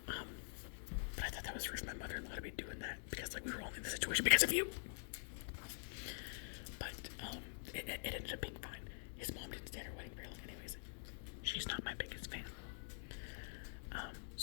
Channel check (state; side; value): silent; right; digital silence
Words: But I thought that was rude for my mother-in-law to be doing that because, we were only in the situation because of you. But, it ended up being fine. His mom didn't stay at her wedding very long anyways. She's not my biggest fan.